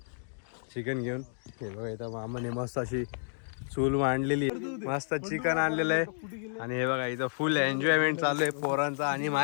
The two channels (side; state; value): right; silent; digital silence